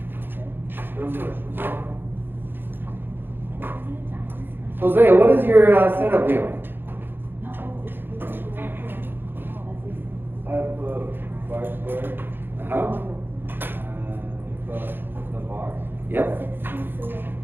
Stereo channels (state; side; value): late; left; 0.10 ms